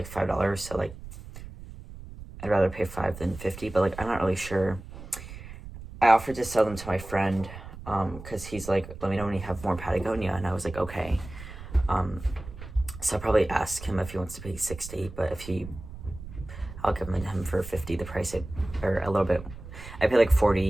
$5, so like, I'd rather pay $5 than $50, but like, I'm not really sure. I offered to sell them to my friend, because he's like, let me know when you have more Patagonia, and I was like, okay. So I'll probably ask him if he wants to pay $60, but I'll give them to him for $50, the price, or a little bit. I pay like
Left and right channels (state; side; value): noise; right; rumble, 13 dB below the sound